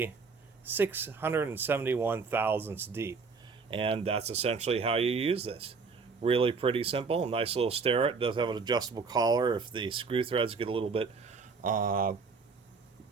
671 thousandths deep. And that's essentially how you use this. Really pretty simple. Nice little Starrett. It does have an adjustable collar. If the screw threads get a little bit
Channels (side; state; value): left; quieter; 4.8 dB